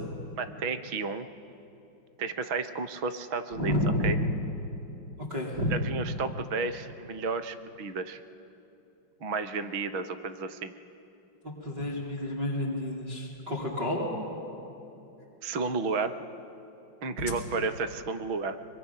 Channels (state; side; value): late; left; 6.1 ms